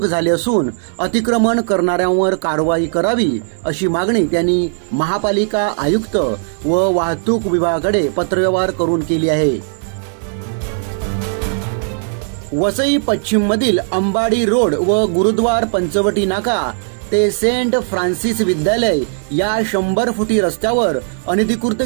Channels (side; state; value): left; silent; digital silence